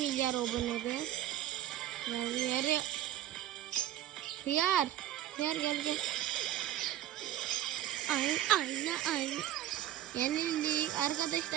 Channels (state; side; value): quieter; left; 12.5 dB